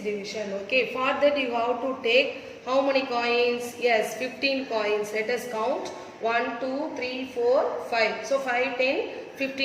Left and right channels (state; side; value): identical; both; correlation 1.00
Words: Okay. For that you have to take how many coins? Yes, 15 coins. Let us count. 1, 2, 3, 4, 5. So 5, 10,